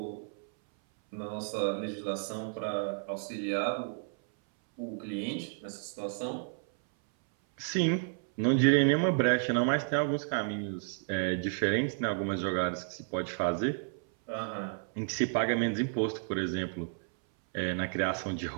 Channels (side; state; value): left; silent; 57 dB below the other